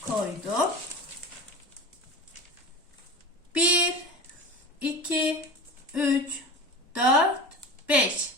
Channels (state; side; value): normal; both; correlation 0.31